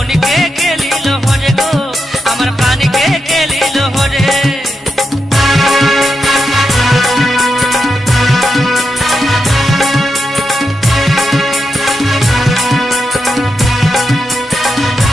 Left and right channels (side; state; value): both; normal; correlation 0.86